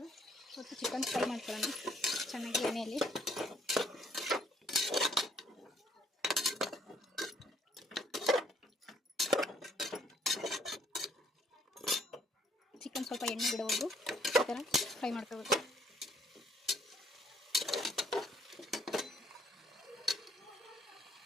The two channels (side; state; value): both; normal; correlation 0.65